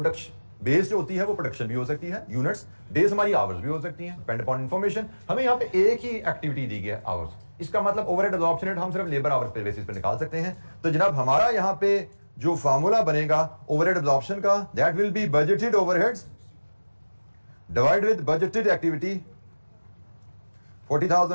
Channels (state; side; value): inverted; both; correlation -1.00